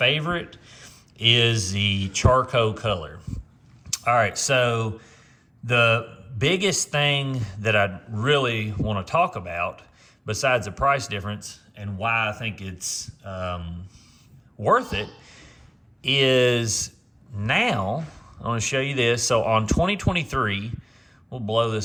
is the charcoal color. All right, so the biggest thing that I really want to talk about, besides the price difference and why I think it's worth it, is now, I want to show you this. So on 2023, we'll blow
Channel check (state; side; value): identical; both; correlation 1.00